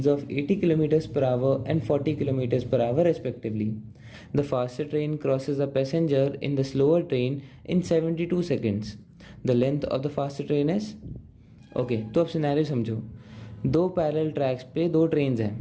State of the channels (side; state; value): both; identical; correlation 1.00